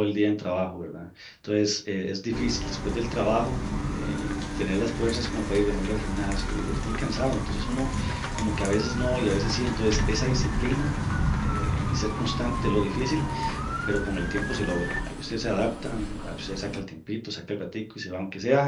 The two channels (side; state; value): both; identical; correlation 1.00